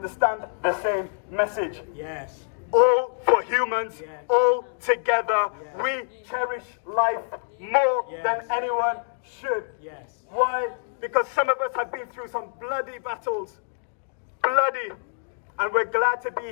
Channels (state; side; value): silent; right; digital silence